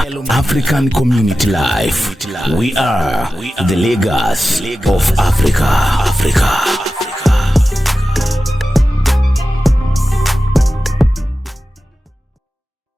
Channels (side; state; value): both; normal; correlation 0.94